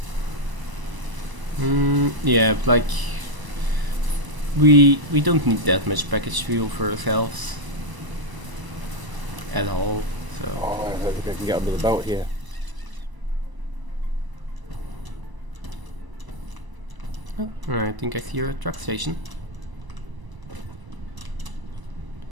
Yeah, like, we don't need that much packaged fuel for ourselves. At all, so. Oh, I don't think I can get under the belt here. Oh, I think I see a truck station.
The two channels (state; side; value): late; left; 1.0 ms